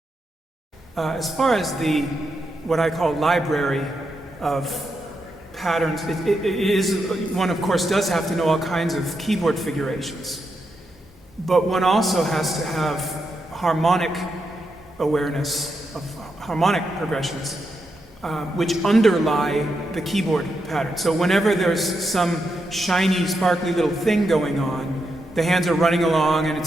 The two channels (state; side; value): normal; both; correlation 0.84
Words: As far as what I call library of patterns, it is, one of course does have to know all kinds of keyboard figurations. But one also has to have harmonic awareness of harmonic progressions, which underlie the keyboard pattern. So whenever there's some shiny, sparkly little thing going on, the hands are running along and